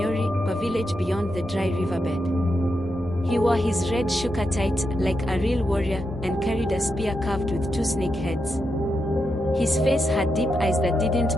a village beyond the dry riverbed. He wore his red shuka tight, like a real warrior, and carried a spear carved with 2 snake heads. His face had deep eyes that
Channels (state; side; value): normal; both; correlation 0.85